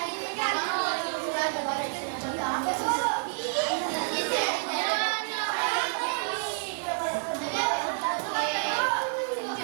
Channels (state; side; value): silent; left; digital silence